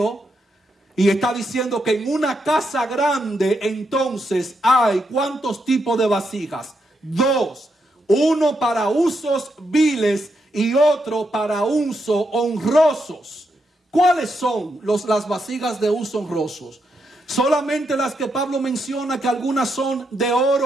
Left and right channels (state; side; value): normal; both; correlation 0.82